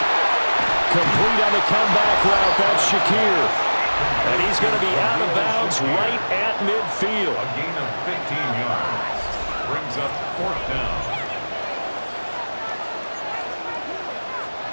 Complete on the comeback route. That's Shakir. And he's going to be out of bounds right at midfield. A gain of 15 yards brings up 4th down.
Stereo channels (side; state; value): both; inverted; correlation -1.00